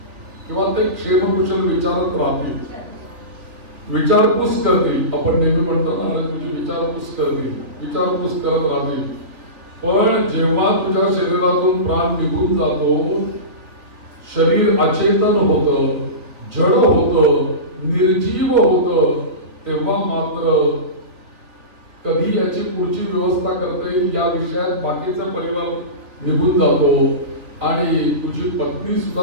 किंवा ते क्षेम कुशल विचारत राहतील, विचारपूस करतील. आपण नेहमी म्हणतो ना, तुझी विचारपूस करतील, विचारपूस करत राहतील. पण जेव्हा तुझ्या शरीरातून प्राण निघून जातो, शरीर अचेतन होतं, जड होतं, निर्जीव होतं, तेव्हा मात्र कधी याची पुढची व्यवस्था करता येईल या विषयात बाकीचा परिवार निघून जातो आणि तुझी पत्नी सुद्धा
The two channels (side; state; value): left; late; 3.3 ms